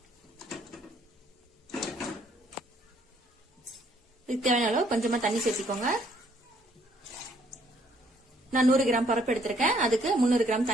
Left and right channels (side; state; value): both; normal; correlation 0.66